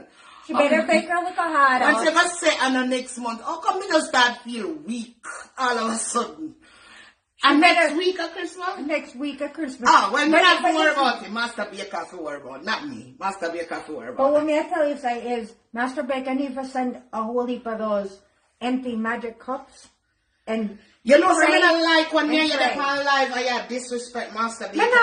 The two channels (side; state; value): both; identical; correlation 1.00